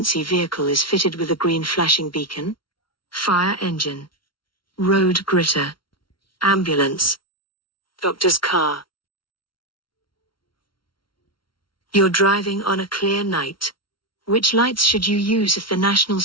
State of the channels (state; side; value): late; right; 0.74 ms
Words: vehicle is fitted with a green flashing beacon? Fire engine. Road gritter. Ambulance. Doctor's car. You're driving on a clear night. Which lights should you use if the national